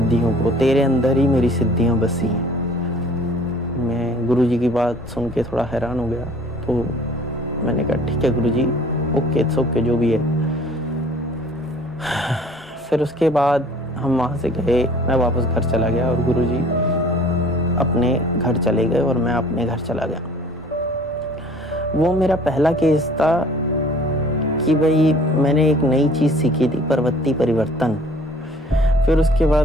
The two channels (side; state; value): both; normal; correlation 0.51